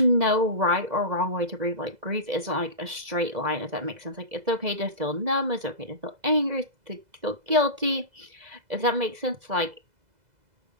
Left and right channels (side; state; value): left; late; 2.0 ms